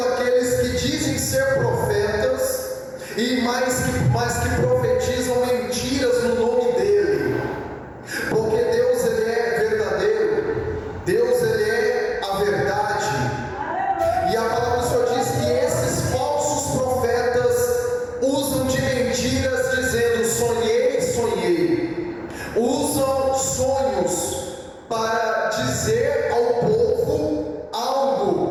aqueles que dizem ser profetas e mais que profetizam mentiras no nome dele. Porque Deus, ele é verdadeiro, Deus, ele é a verdade. E a palavra do Senhor diz que esses falsos profetas usam de mentiras dizendo: sonhei, sonhei. Usam sonhos para dizer ao povo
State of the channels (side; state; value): both; identical; correlation 1.00